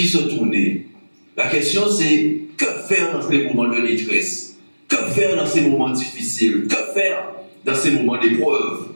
se tourner? La question c'est, que faire dans ces moments de détresse? Que faire dans ces moments difficiles? Que faire dans ces moments d'épreuve?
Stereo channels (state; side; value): inverted; both; correlation -1.00